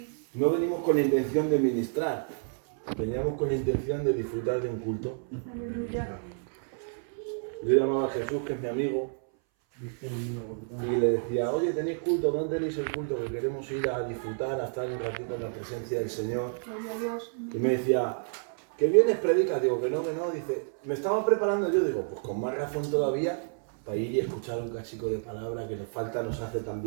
no venimos con la intención de ministrar, veníamos con la intención de disfrutar de un culto. Aleluya. Yo llamaba a Jesús, que es mi amigo, y le decía, oye, ¿tenéis culto? ¿Dónde tenéis el culto? Que queremos ir a disfrutar, a estar un ratito en la presencia del Señor. Gloria a Dios. Y me decía, ¿que vienes, predicas? Digo, que no, dice, me estaba preparando yo, digo, pues con más razón todavía, para ir y escuchar un cachico de palabra que nos falta, nos hace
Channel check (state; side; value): silent; left; 58 dB below the other